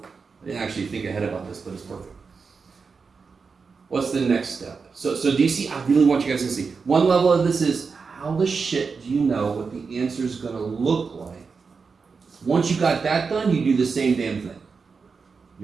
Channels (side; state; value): left; quieter; 5.1 dB